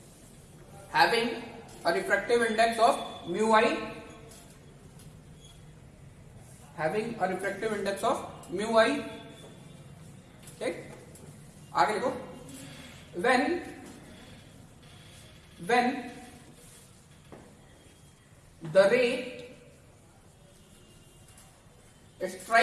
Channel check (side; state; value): both; identical; correlation 1.00